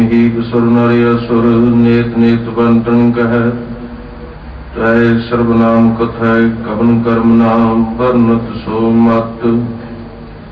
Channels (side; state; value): both; identical; correlation 1.00